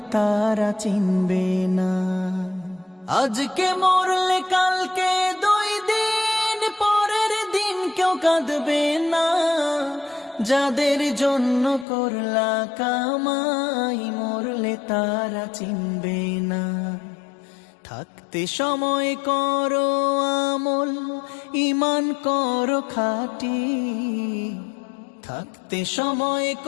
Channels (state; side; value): drops out; right; at 11.9 s